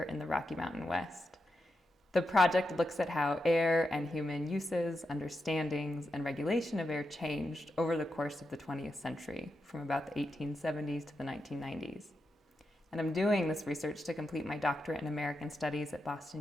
in the Rocky Mountain West. The project looks at how air and human uses, understandings, and regulation of air changed over the course of the 20th century, from about the 1870s to the 1990s. And I'm doing this research to complete my doctorate in American Studies at Boston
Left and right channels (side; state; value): both; normal; correlation 0.87